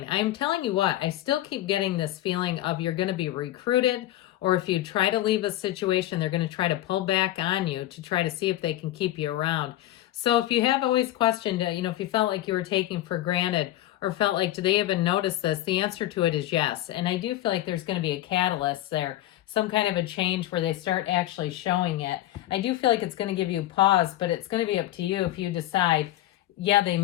I'm telling you what, I still keep getting this feeling of you're going to be recruited, or if you try to leave a situation, they're going to try to pull back on you to try to see if they can keep you around. So if you have always questioned, if you felt like you were taking for granted or felt like, do they even notice this? The answer to it is yes. And I do feel like there's going to be a catalyst there, some kind of a change where they start actually showing it. I do feel like it's going to give you pause, but it's going to be up to you if you decide, yeah, they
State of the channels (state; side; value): quieter; right; 14.5 dB